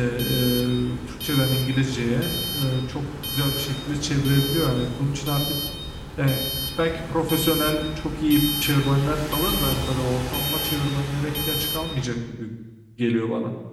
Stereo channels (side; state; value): both; identical; correlation 1.00